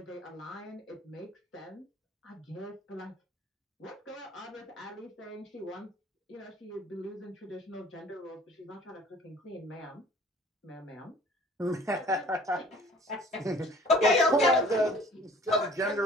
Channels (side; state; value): both; normal; correlation 0.50